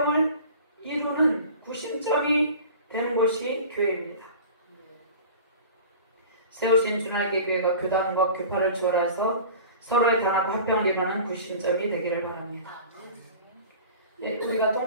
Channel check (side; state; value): both; inverted; correlation -0.40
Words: 이루는 구심점이 되는 것이 교회입니다. 세우신 주날개 교회가 교단과 교파를 초월해서 서로의 단합과 화평을 이루는 구심점이 되기를 바랍니다. 우리가